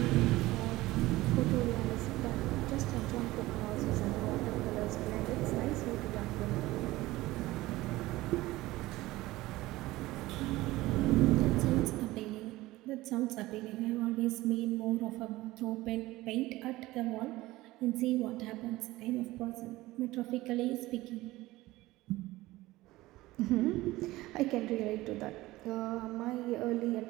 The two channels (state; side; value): quieter; left; 18.3 dB